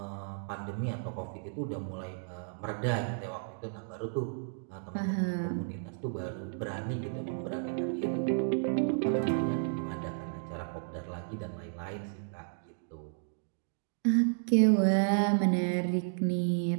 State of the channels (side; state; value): left; silent; digital silence